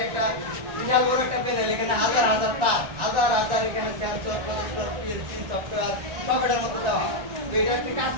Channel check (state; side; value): late; left; 1.9 ms